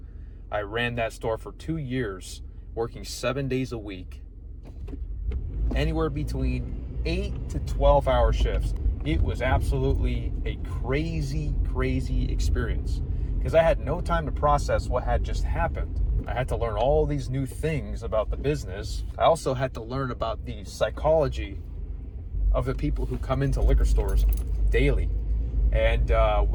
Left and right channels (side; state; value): both; identical; correlation 1.00